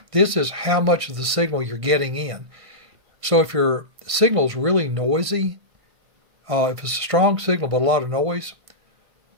This is how much of the signal you're getting in. So if your signal is really noisy, if it's a strong signal but a lot of noise,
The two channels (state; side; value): late; left; 1.5 ms